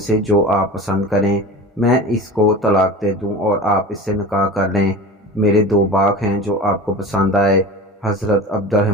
جو آپ پسند کریں میں اس کو طلاق دے دوں اور آپ اس سے نکاح کر لیں۔ میرے 2 باغ ہیں جو آپ کو پسند آئے۔ حضرت عبد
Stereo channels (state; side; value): normal; both; correlation 0.34